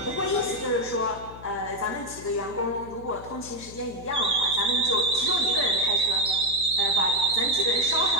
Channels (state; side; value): noise; left; hum, 17 dB below the sound